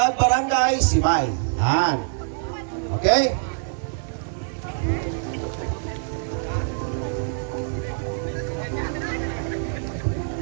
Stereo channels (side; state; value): left; silent; 62 dB below the other